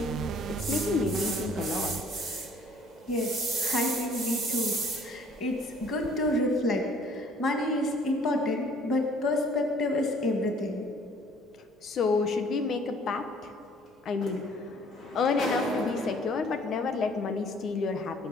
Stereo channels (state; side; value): normal; both; correlation 0.56